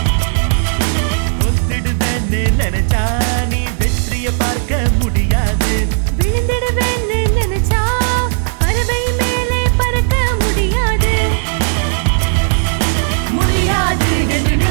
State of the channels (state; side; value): silent; left; digital silence